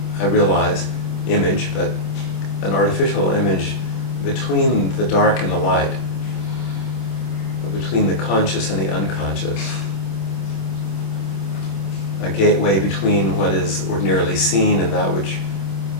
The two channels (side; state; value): right; late; 26 ms